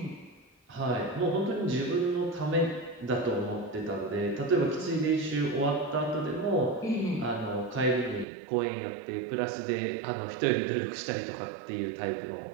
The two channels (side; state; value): left; drops out; at 8.2 s